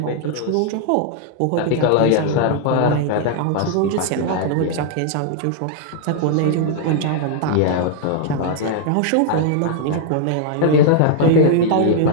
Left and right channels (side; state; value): both; different; correlation 0.00